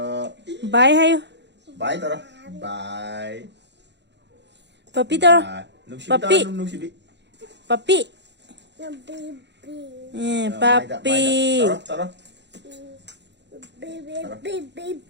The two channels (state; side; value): late; left; 0.51 ms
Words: Bye hay. Bye tao. Bye. Papi tôi. Papi. Papi. Papi. Tao.